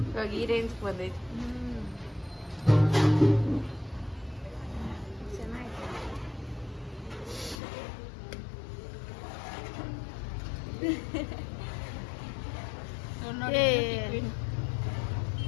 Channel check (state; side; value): drops out; right; at 7.6 s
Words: ಇವಾಗ ಈ ರೇಂಜ್ ಬಂದೈತಿ.